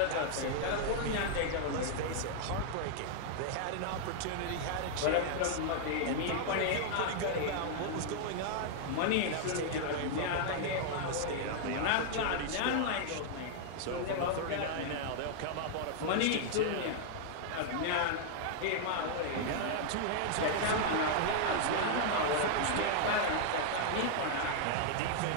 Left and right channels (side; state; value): both; different; correlation -0.01